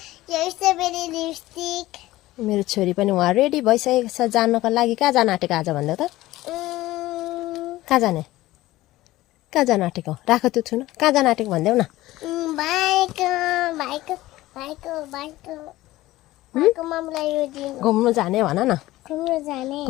मेरो छोरी पनि उहाँ रेडी भइसकेको छ जानको लागि। कहाँ जान आँटेको आज भन्दा त? कहाँ जाने आँटेको? राख त्यो छुन। कहाँ जान आँटेको भन्देऊ न। घुम्नु जाने भन न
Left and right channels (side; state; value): right; quieter; 17.0 dB